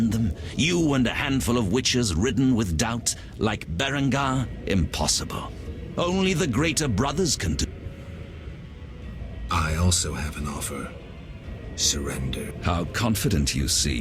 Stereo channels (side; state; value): both; identical; correlation 1.00